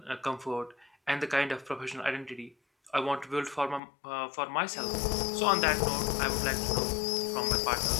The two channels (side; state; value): right; drops out; at 3.8 s